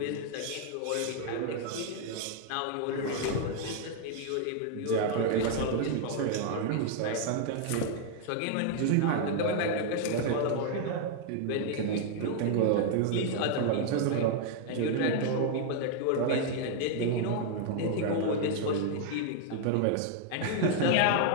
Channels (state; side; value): different; both; correlation 0.00